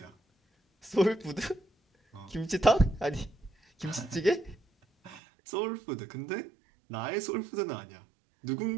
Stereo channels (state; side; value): drops out; left; at 5.2 s